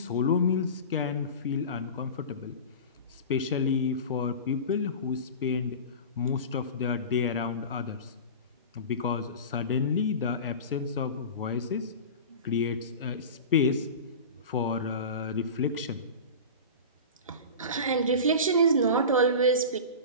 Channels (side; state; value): both; inverted; correlation -0.31